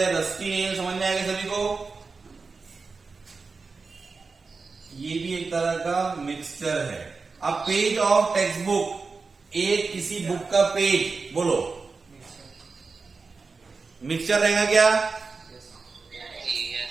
रस्टी नेल समझ में आएगा सभी को? ये भी एक तरह का मिक्सचर है। अब पेज ऑफ टेक्स्ट बुक, एक किसी बुक का पेज, बोलो मिक्सचर रहेगा क्या?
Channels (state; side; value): quieter; left; 4.4 dB